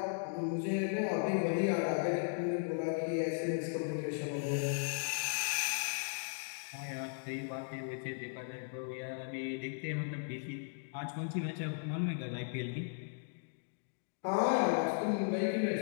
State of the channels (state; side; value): silent; right; digital silence